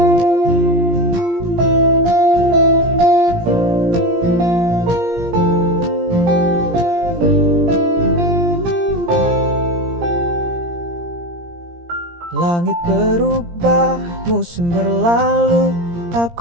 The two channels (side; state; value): left; late; 17 ms